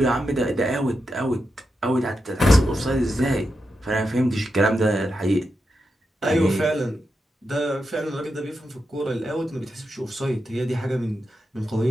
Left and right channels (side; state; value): both; normal; correlation 0.87